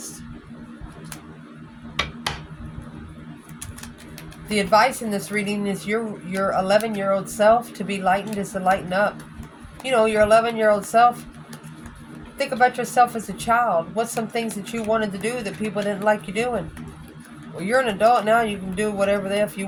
The advice in this reading is your 11-year-old self to be lightened is to lighten up. You know, your 11-year-old self, think about yourself as a child. What's some things that you wanted to do that people didn't like you doing? Well, you're an adult now. You can do whatever the F you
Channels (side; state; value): both; identical; correlation 1.00